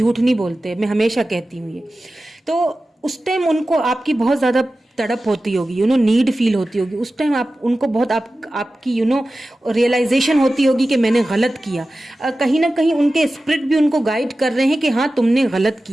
नहीं बोलते, मैं हमेशा कहती हूँ ये। तो उस टाइम उनको आपकी बहुत ज्यादा तड़प होती होगी, नीड फील होती होगी उस टाइम, आप उनको बहुत आपकी रियलाइजेशन होती होगी कि मैंने गलत किया। कहीं ना कहीं उनके स्पिरिट भी उनको गाइड कर रहे हैं कि हाँ तुमने गलत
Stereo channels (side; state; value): both; normal; correlation 0.95